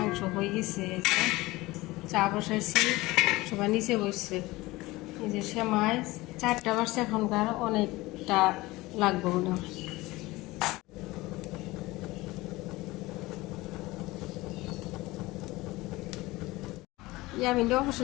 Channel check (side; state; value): right; quieter; 20.3 dB